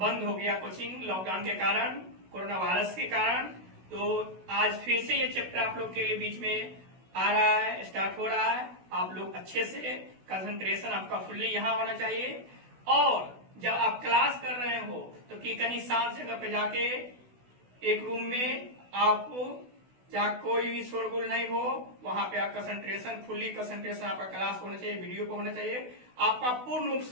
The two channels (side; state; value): left; late; 16 ms